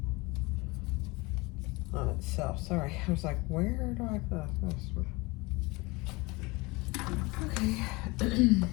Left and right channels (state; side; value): quieter; right; 24.5 dB